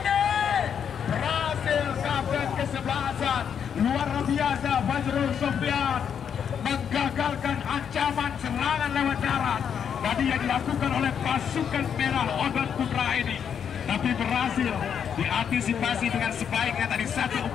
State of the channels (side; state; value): right; quieter; 7.9 dB